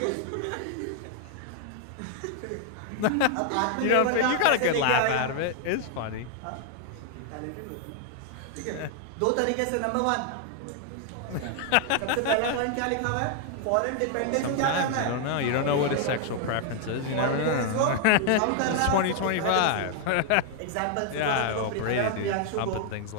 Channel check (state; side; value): different; both; correlation 0.00